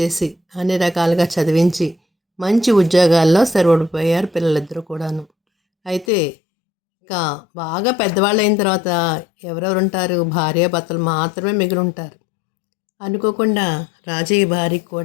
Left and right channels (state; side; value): drops out; right; at 6.1 s